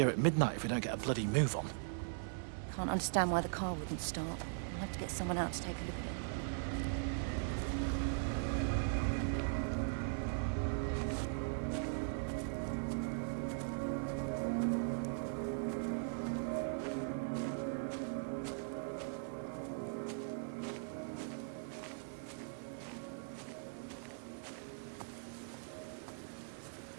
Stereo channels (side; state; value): left; silent; 51 dB below the other